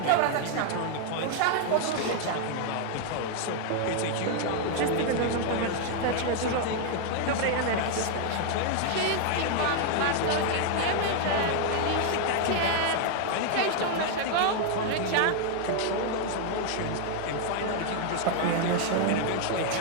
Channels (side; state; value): both; different; correlation 0.00